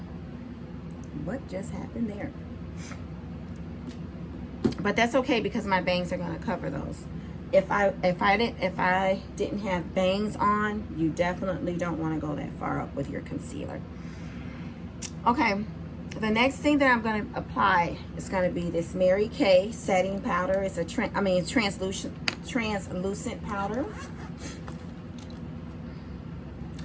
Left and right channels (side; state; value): both; identical; correlation 1.00